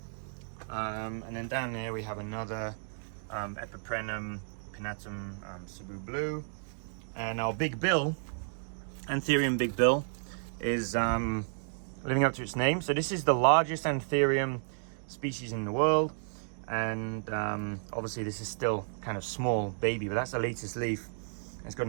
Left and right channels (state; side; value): silent; left; digital silence